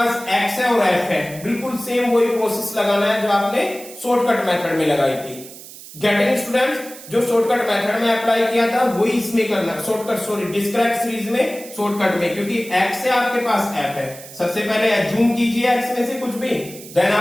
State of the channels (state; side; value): noise; right; hiss, 16 dB below the sound